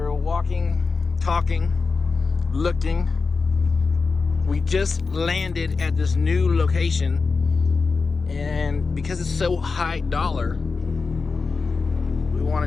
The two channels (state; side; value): quieter; right; 4.4 dB